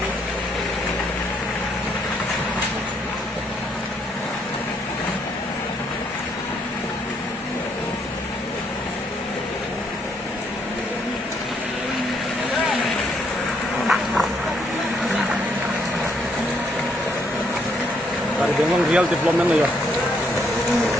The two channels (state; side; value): normal; both; correlation 0.71